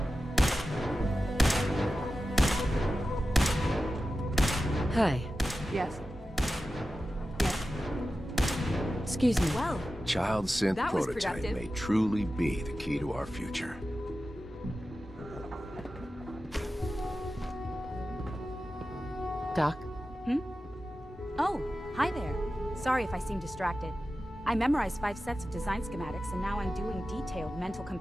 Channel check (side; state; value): both; normal; correlation 0.93